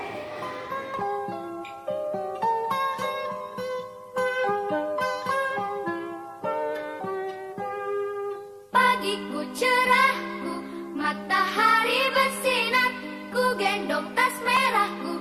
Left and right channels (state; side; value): identical; both; correlation 1.00